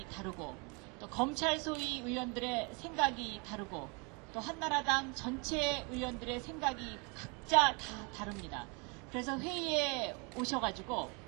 다르고 또 검찰 소위 의원들의 생각이 다르고 또 한나라당 전체 의원들의 생각이 각자 다 다릅니다. 그래서 회의에 오셔가지고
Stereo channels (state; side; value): quieter; left; 31.6 dB